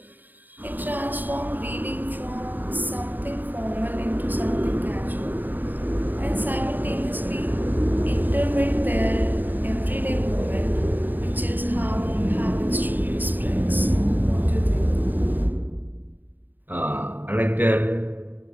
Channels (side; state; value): left; late; 0.089 ms